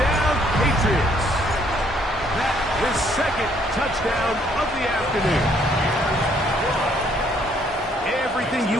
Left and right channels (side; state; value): both; normal; correlation 0.66